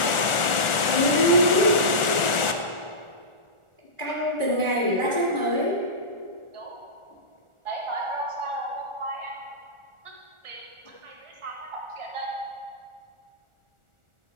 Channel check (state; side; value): late; left; 1.4 ms